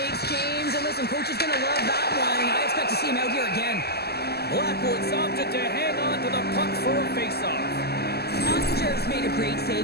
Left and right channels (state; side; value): late; right; 0.46 ms